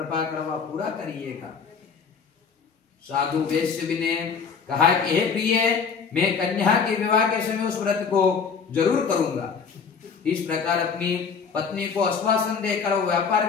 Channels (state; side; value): quieter; right; 5.9 dB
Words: कर वह पूरा करिएगा। साधु वेश्य ने कहा कि हे प्रिय, मैं कन्या के विवाह के समय उस व्रत को जरूर करूंगा। इस प्रकार अपनी पत्नी को आश्वासन देकर वो